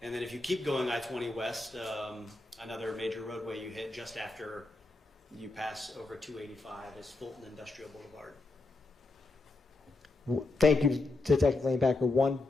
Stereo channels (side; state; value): right; quieter; 3.3 dB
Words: And then if you keep going I-20 West, another major roadway you hit just after you pass over 285 is Fulton Industrial Boulevard. Thank you, Detective Leonpacker. One